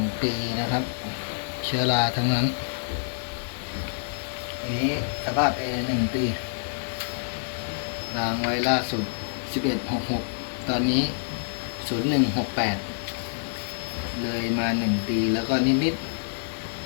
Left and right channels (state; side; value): silent; right; digital silence